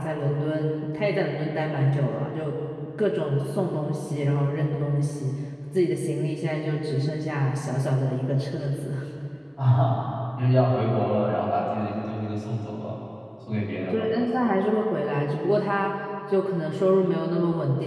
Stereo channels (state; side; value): identical; both; correlation 1.00